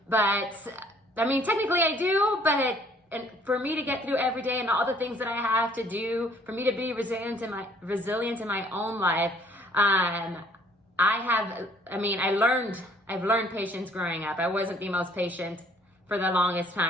But I mean, technically I do, but and for me to get through every day and all the things that I have to do, for me to be resilient in my own life, I've learned patience growing up. I wasn't the most patient for the longest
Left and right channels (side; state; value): both; normal; correlation 0.60